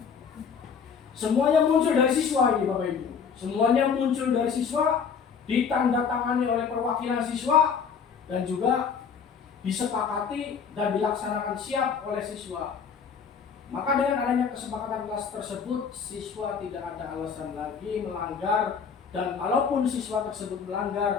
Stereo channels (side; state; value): right; quieter; 6.4 dB